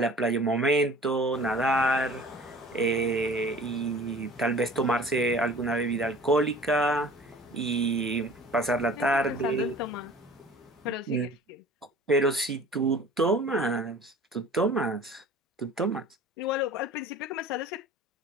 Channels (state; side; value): normal; both; correlation 0.45